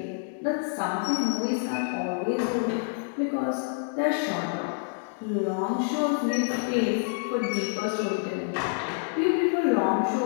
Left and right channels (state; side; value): silent; right; digital silence